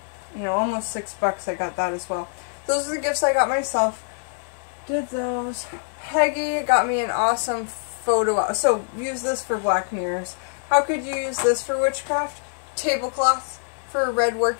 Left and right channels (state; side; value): silent; right; digital silence